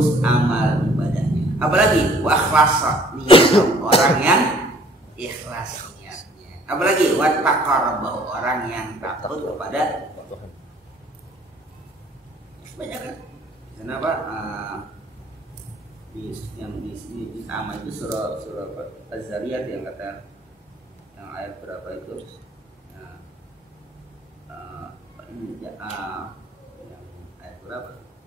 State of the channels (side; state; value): both; normal; correlation 0.57